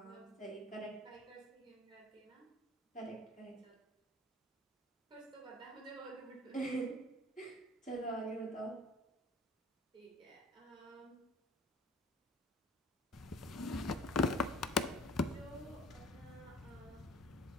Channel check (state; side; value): normal; both; correlation 0.48